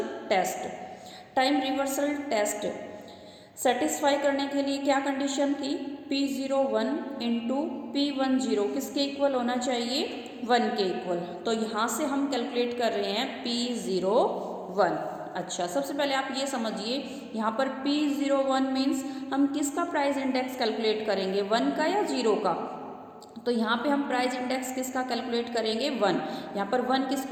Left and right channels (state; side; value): identical; both; correlation 1.00